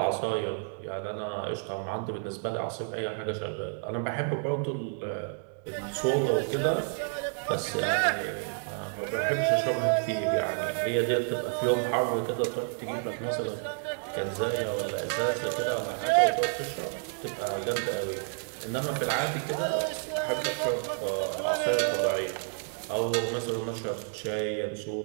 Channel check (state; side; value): silent; left; 56 dB below the other